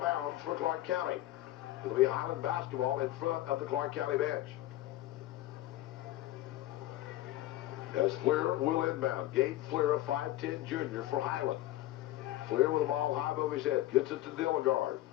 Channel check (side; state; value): right; quieter; 15.4 dB